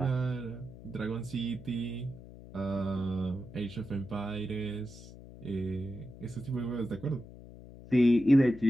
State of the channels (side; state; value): left; noise; hum, 17 dB below the sound